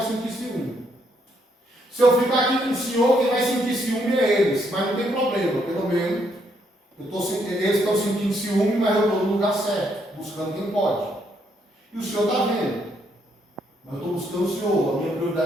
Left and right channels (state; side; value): normal; both; correlation 0.73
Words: sentir ciúme. Se eu ficar aqui com o Senhor, quem vai sentir ciúme é eles. Mas não tem problema, pelo menos eles estão sentindo ciúme, mas eu estou no lugar certo, buscando quem pode. E o Senhor está vendo. Mas eu estou buscando o Senhor, a minha